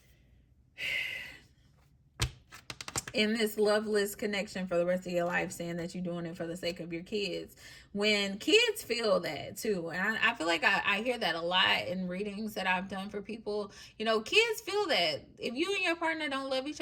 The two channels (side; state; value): both; identical; correlation 1.00